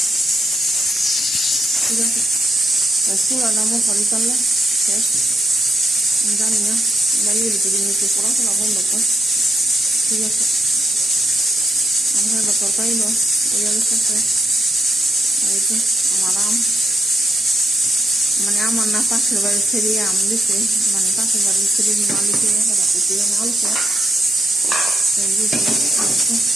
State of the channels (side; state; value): both; normal; correlation 0.83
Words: ঠিক আছে, চুলা দামও খালি চাললে শেষ। আমি জানি না দাঁড়িয়ে ভিতরে নিচে পড়াশোনা বন্ধ করে। ঠিক আছে, আমার তরকারি লো ওই গেছে। এই তো আমার আম, মানে আমার না পাশের বাড়ির ছেড়ে আম দিছে, মানে পাশের বাড়ির ছেড়ে মালিকে আলছে।